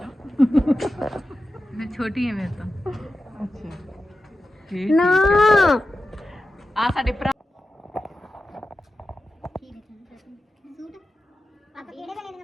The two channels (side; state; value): both; normal; correlation 0.92